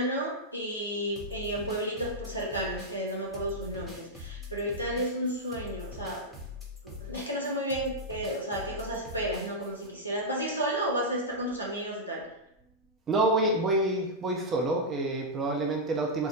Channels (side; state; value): both; normal; correlation -0.07